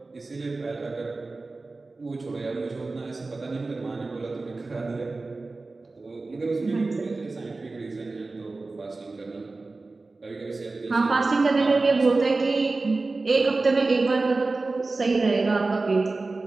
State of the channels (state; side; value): quieter; left; 3.5 dB